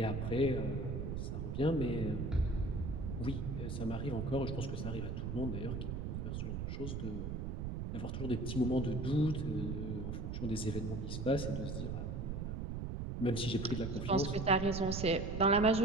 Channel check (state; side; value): noise; right; rumble, 3 dB below the sound